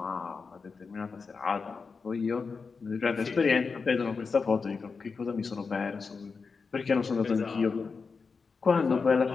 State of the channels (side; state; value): right; quieter; 4.9 dB